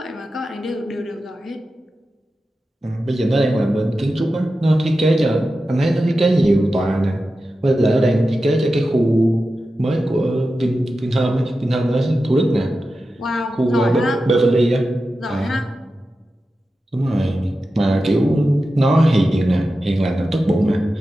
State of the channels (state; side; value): normal; both; correlation 0.92